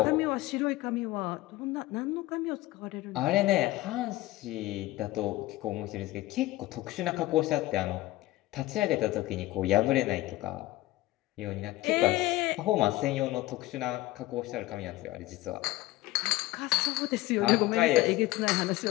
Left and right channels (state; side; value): quieter; right; 17.8 dB